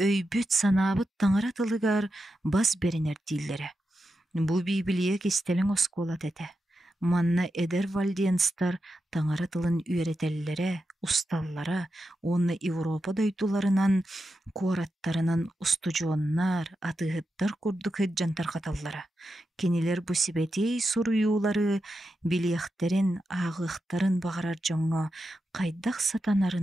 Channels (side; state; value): both; normal; correlation 0.88